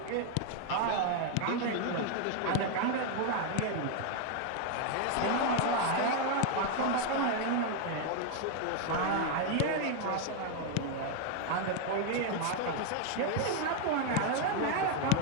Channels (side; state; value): both; different; correlation 0.01